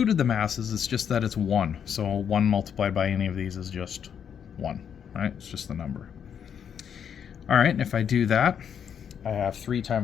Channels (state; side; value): quieter; right; 8.0 dB